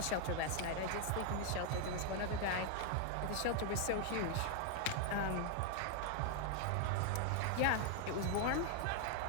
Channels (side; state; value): both; different; correlation 0.00